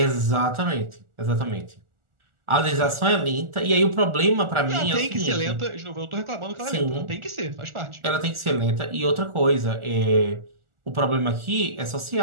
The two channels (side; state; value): left; late; 1.4 ms